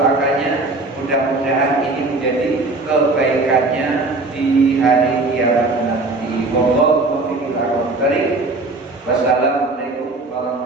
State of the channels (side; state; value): left; quieter; 3.2 dB